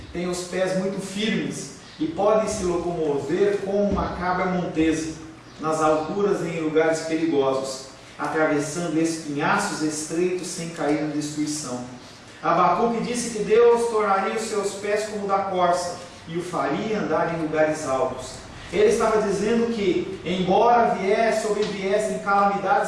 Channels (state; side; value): identical; both; correlation 1.00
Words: tem os pés muito firmes e podem se locomover como uma cabra montesa nas alturas e em lugares perigosos, atravessando espinhaços estreitos sem cair na destruição. Abacuque disse que Deus tornaria os seus pés como o da corça e o faria andar em lugares altos. Ele estava dizendo que, embora sobreviessem